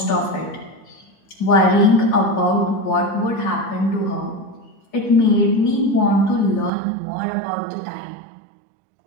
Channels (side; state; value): left; drops out; at 6.7 s